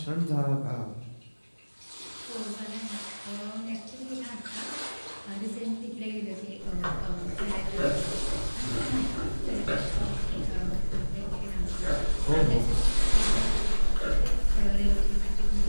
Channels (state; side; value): inverted; both; correlation -1.00